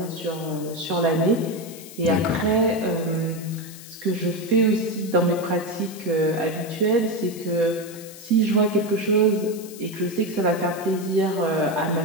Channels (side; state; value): left; noise; hiss, 16 dB below the sound